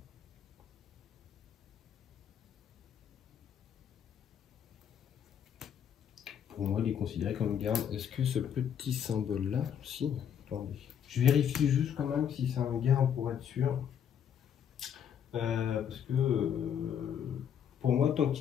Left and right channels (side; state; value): right; quieter; 8.6 dB